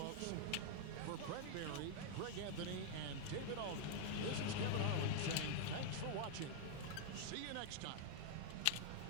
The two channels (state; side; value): different; both; correlation -0.01